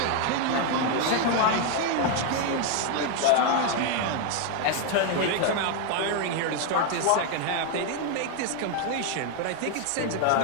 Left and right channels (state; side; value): different; both; correlation 0.01